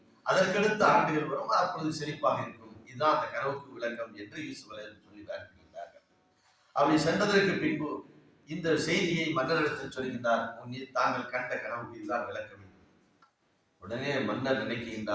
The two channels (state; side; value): identical; both; correlation 1.00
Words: அதற்கடுத்த ஆண்டுகள் வரும், அப்பொழுது செழிப்பாக இருக்கும். இதுதான் அந்த கனவுக்கு விளக்கம் என்று யூசுப் அலைஹிஸ்ஸலாம் சொல்லி காண்பிக்கின்றார்கள். அப்படி சென்றதற்கு பின்பு இந்த செய்தியை மன்னரிடத்தில் சொல்கின்றார், தாங்கள் கண்ட கனவுக்கு இதுதான் விளக்கம். உடனே மன்னர்